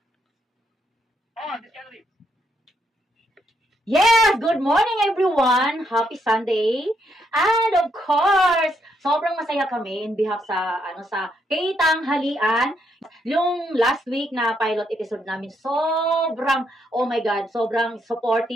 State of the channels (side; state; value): both; normal; correlation 0.76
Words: Yes! Good morning everyone! Happy Sunday! And of course, sobrang masaya kami in behalf sa Tanghalian. Yung last week na pilot episode namin, sobrang, oh my God, sobrang